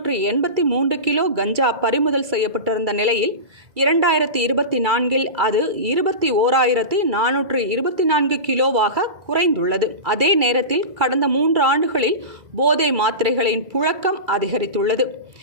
கிலோ கஞ்சா பறிமுதல் செய்யப்பட்டிருந்த நிலையில் 2024 அது 21,424 கிலோவாக குறைந்துள்ளது. அதே நேரத்தில் கடந்த 3 ஆண்டுகளில் போதை மாத்திரைகளின் புழக்கம் அதிகரித்துள்ளது.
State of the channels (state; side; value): late; left; 2.2 ms